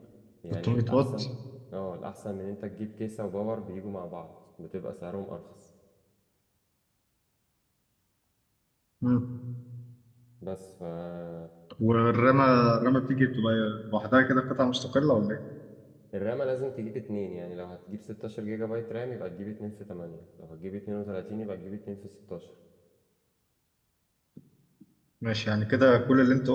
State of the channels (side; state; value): both; identical; correlation 1.00